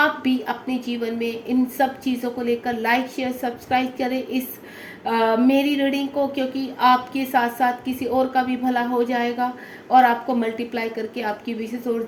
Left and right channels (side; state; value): both; identical; correlation 1.00